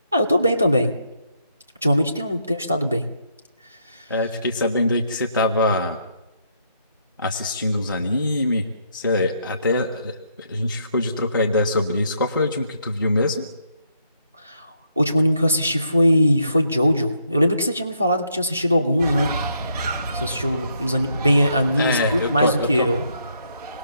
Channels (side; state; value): both; inverted; correlation -0.74